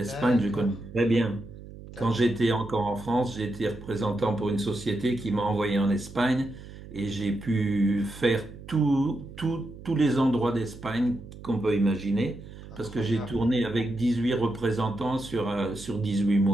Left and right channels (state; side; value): noise; right; hum, 15 dB below the sound